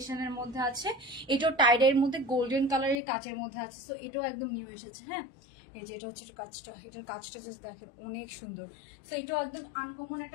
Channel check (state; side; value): drops out; right; at 3.0 s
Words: মধ্যে আছে। এটাও টাইডের মধ্যে গোল্ডেন কালারের কাচের মধ্যে আছে। সো এটাও একদম নিউ এসেছে। হ্যাঁ, এই যে এটা হচ্ছে কাজটা, এটার কাজটা জাস্ট দেখেন অনেক সুন্দর। সো এটাও একদম আনকমন